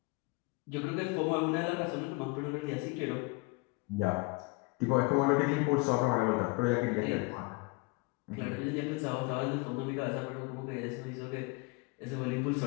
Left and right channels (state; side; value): quieter; right; 26.8 dB